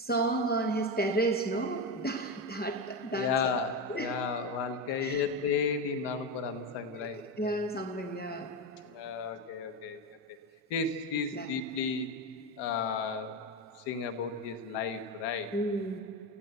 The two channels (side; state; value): both; normal; correlation 0.16